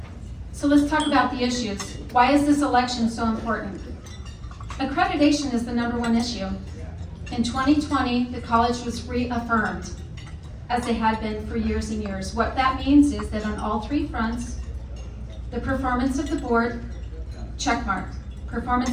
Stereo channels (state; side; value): identical; both; correlation 1.00